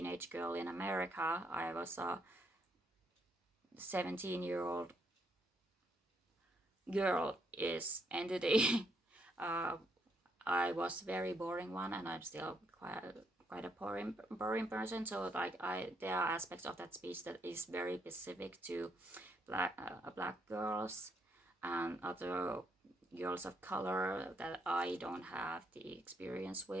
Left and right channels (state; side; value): normal; both; correlation 0.74